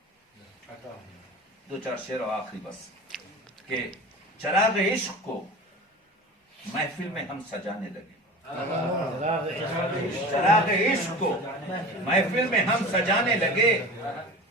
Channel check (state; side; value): normal; both; correlation 0.35